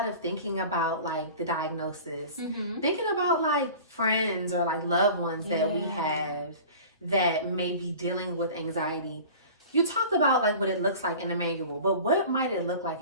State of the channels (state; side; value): inverted; both; correlation -0.40